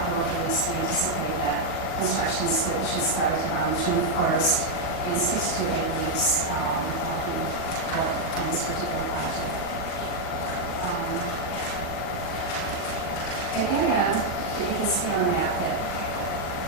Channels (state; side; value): late; right; 40 ms